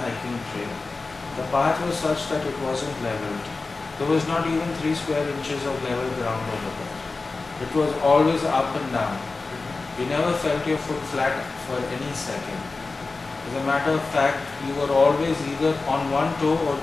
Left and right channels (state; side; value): quieter; right; 3.8 dB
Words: hiking trail. The path was such that it wasn't leveled. There was not even 3 square inches of level ground over there. It was always up and down. You never felt your foot flat for any second. As a matter of fact, you were always either on one toe or